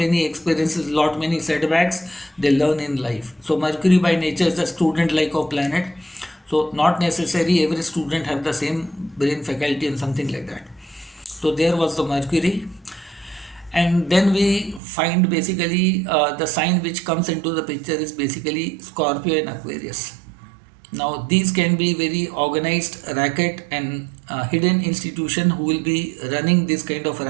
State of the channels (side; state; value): left; drops out; at 14.8 s